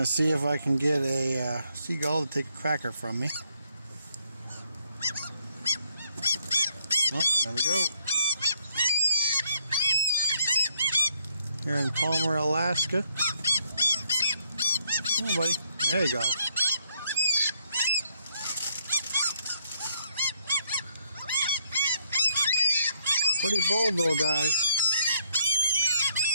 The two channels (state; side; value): inverted; both; correlation -0.70